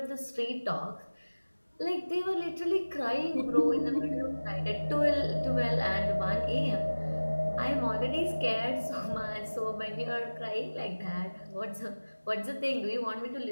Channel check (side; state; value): both; inverted; correlation -1.00